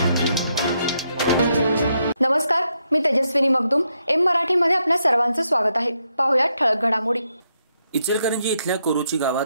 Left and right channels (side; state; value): both; inverted; correlation -0.79